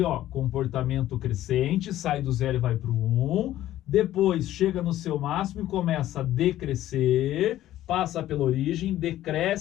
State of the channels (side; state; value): right; quieter; 13.7 dB